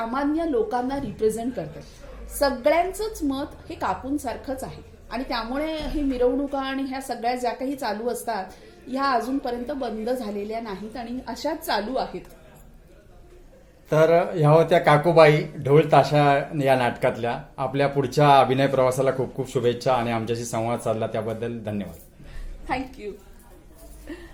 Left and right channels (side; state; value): both; identical; correlation 1.00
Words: लोकांना रिप्रेझेंट करतं. सगळ्यांचंच मत हे काकूंसारखंच आहे आणि त्यामुळे ही मिरवणुका आणि ह्या सगळ्या ज्या काही चालू असतात ह्या अजूनपर्यंत बंद झालेल्या नाहीत आणि अशाच चालू आहेत. तर ह्या होत्या काकूबाई ढोल ताशा या नाटकातल्या. आपल्या पुढच्या अभिनय प्रवासाला खूप खूप शुभेच्छा आणि आमच्याशी संवाद साधला त्याबद्दल धन्यवाद. थँक्यू.